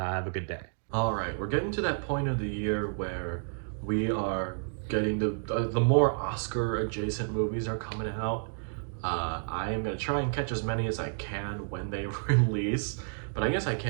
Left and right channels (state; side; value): silent; left; digital silence